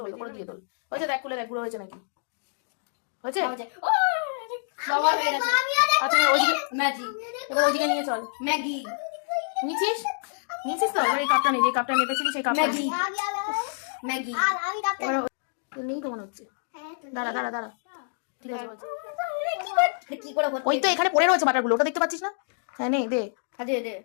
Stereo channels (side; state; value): right; silent; digital silence